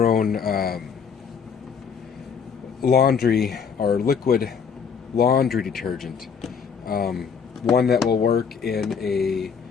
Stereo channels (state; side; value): quieter; right; 6.5 dB